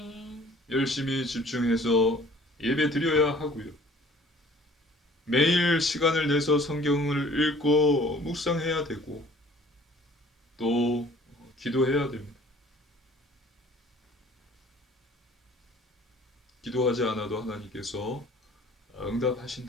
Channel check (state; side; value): normal; both; correlation 0.52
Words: 열심히 집중해서 예배 드려야 하고요. 매일 시간을 내서 성경을 읽고 묵상해야 되고 또 기도해야 됩니다. 기도하지 않아도 하나님께서